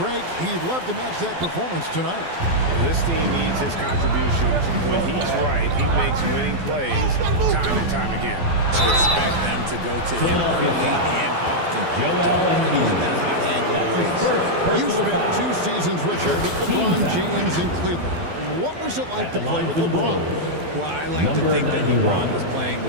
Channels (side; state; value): left; late; 12 ms